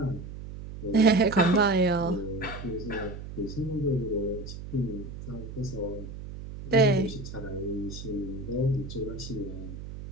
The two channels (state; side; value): noise; right; hum, 10 dB below the sound